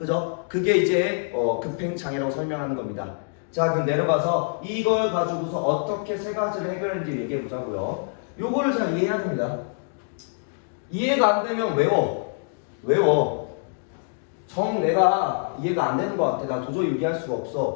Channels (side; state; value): right; silent; digital silence